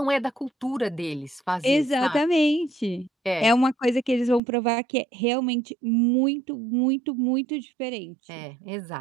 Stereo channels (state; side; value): drops out; left; at 4.4 s